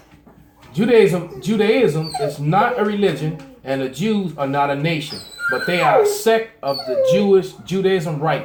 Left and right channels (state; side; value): identical; both; correlation 1.00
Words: Judaism is not a religion, and the Jews are not a nation, but they are a sect of the Judaism